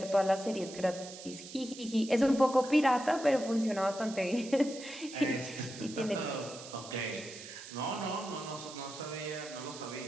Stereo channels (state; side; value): noise; right; hiss, 14 dB below the sound